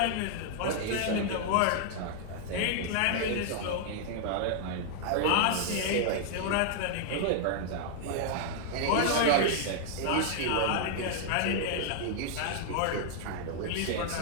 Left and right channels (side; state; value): both; different; correlation -0.01